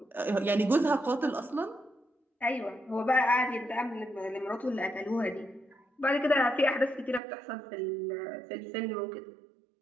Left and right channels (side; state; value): left; drops out; at 7.2 s